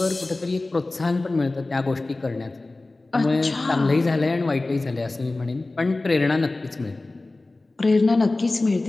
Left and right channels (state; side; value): quieter; right; 3.1 dB